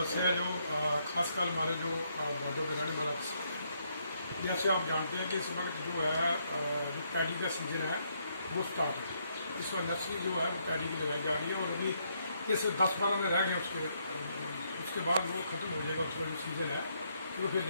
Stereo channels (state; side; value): inverted; both; correlation -0.74